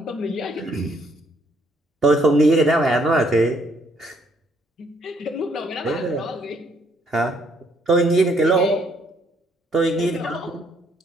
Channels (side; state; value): both; normal; correlation 0.68